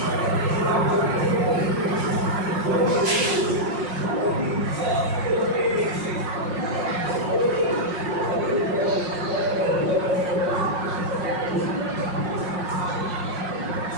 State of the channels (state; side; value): late; left; 5.5 ms